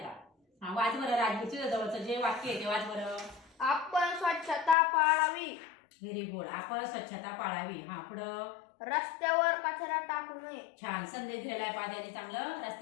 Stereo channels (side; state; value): right; drops out; at 4.8 s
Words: हा वाच बरं राजवीर, तुझ्या जवळचं जे वाक्य आहे ते वाच बरं. आपण स्वच्छता पाळावी. Very good. आपण स्वच्छता पाळावी. हा पुढं. रस्त्यावर कचरा टाकू नये. छान संदेश दिलेला आहे पाद्याने चांगलं.